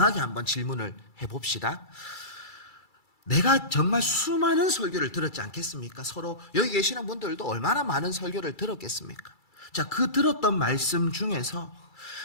한번 질문을 해봅시다. 내가 정말 수많은 설교를 들었지 않겠습니까? 서로 여기 계시는 분들도 얼마나 많은 설교를 들었겠습니까? 자, 그 들었던 말씀 중에서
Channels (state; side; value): late; right; 2.3 ms